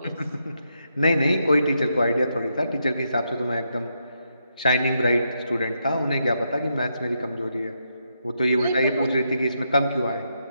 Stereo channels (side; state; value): both; inverted; correlation -0.81